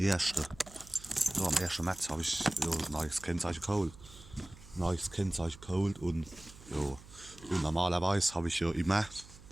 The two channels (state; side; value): noise; right; hum, 19 dB below the sound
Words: März habe ich ein neues Kennzeichen geholt. Und ja, und normalerweise habe ich ja